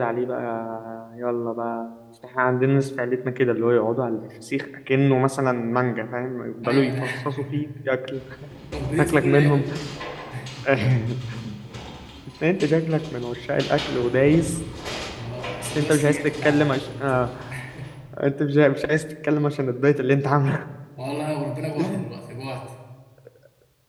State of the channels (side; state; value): both; identical; correlation 1.00